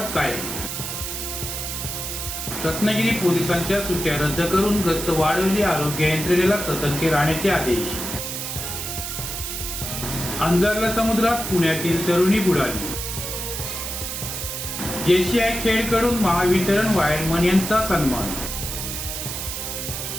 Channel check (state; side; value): noise; right; hiss, 5 dB below the sound